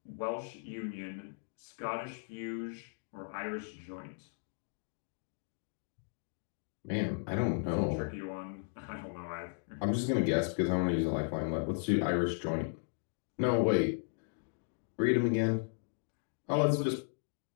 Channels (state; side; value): silent; right; digital silence